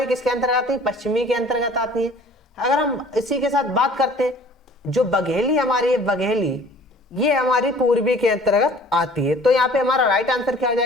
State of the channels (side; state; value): both; normal; correlation 0.50